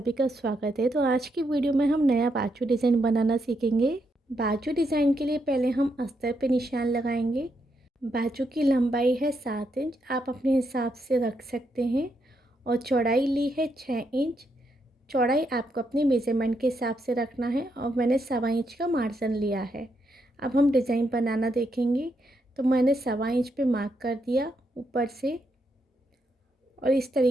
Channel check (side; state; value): both; normal; correlation 0.79